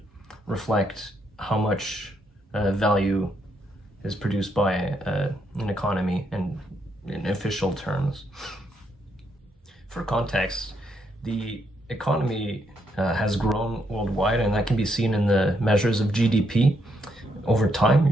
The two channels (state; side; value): normal; both; correlation 0.76